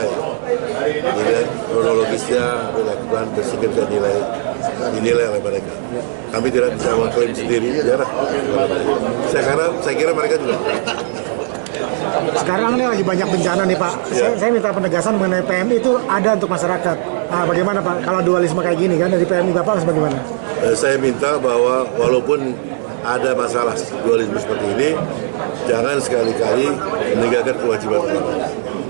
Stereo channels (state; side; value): silent; left; digital silence